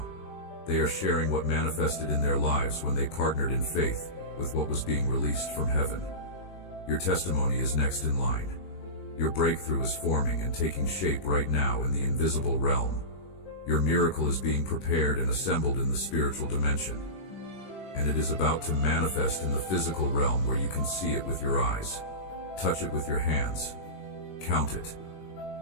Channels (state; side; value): late; right; 21 ms